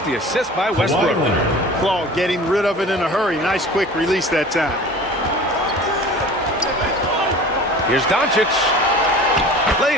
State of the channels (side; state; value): both; normal; correlation 0.41